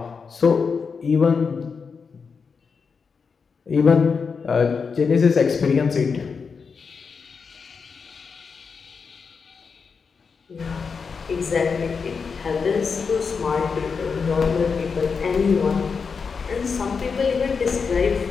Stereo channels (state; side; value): quieter; right; 5.4 dB